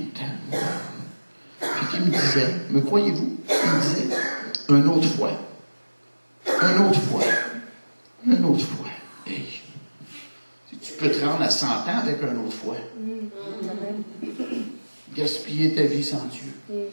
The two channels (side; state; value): both; inverted; correlation -1.00